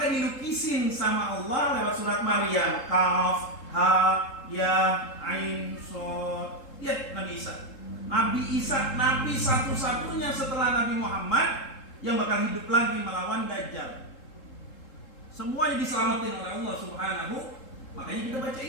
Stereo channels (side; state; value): right; late; 3.7 ms